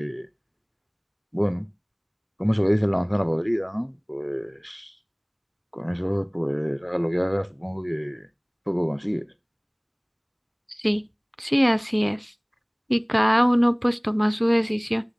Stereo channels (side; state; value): both; identical; correlation 1.00